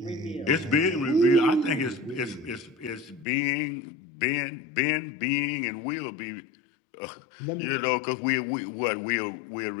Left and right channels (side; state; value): right; drops out; at 3.2 s